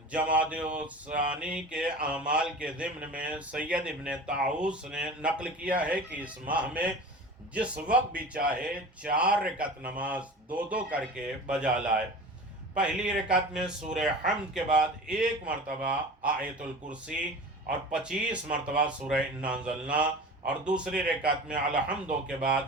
جمادی ثانی کے اعمال کے ضمن میں سید ابن طاؤس نے نقل کیا ہے کہ اس ماہ میں جس وقت بھی چاہے 4 رکعت نماز دو کر کے بجا لائے۔ پہلی رکعت میں سورہ حمد کے بعد 1 مرتبہ آیت الکرسی اور 25 مرتبہ سورہ انا انزلنا، اور دوسری رکعت میں الحمدو کے بعد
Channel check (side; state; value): both; normal; correlation 0.36